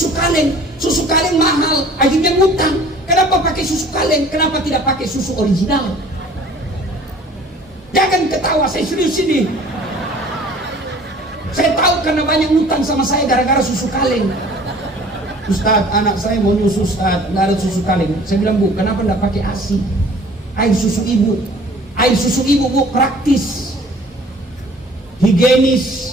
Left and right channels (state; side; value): normal; both; correlation 0.50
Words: kaleng. Susu kaleng mahal, akhirnya ngutang. Kenapa pakai susu kaleng? Kenapa tidak pakai susu original? Jangan ketawa, saya serius ini. Saya tahu karena banyak ngutang sama saya gara-gara susu kaleng. Ustaz, anak saya mau nyusu Ustaz, nggak ada susu kaleng. Saya bilang, Bu, kenapa nggak pakai ASI? Air susu ibu. Air susu ibu, Bu, praktis,